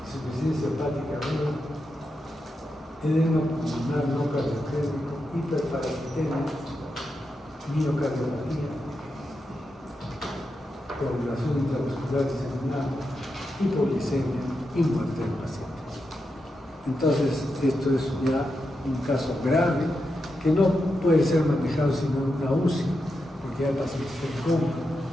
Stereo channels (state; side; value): normal; both; correlation 0.87